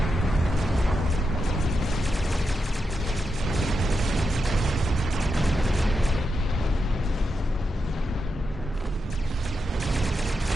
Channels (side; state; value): both; normal; correlation 0.86